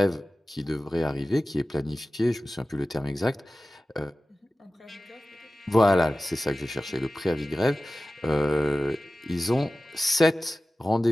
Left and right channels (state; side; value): normal; both; correlation 0.96